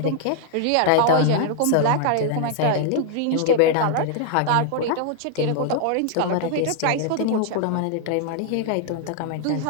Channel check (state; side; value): different; both; correlation 0.00